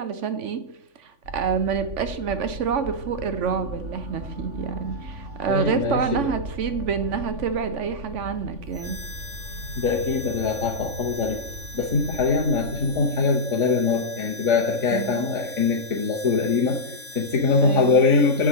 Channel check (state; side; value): late; left; 3.5 ms